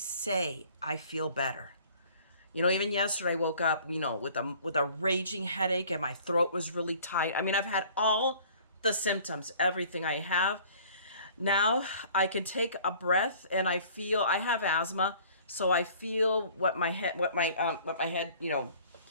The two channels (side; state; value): both; inverted; correlation -0.52